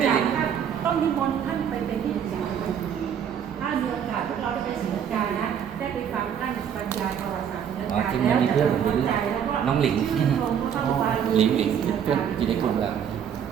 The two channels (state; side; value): quieter; left; 8.4 dB